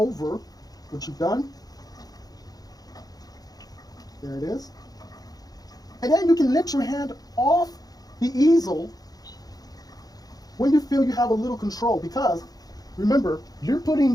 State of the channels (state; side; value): late; right; 0.18 ms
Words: what you've done. There it is. And then you can lift your hand off the easel when you feel you have a little control, because remember, you're putting